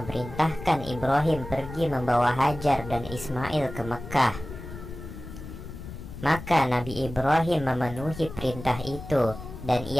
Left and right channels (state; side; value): noise; left; rumble, 12 dB below the sound